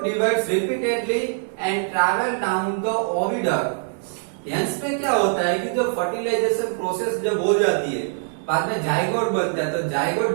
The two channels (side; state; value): left; silent; 62 dB below the other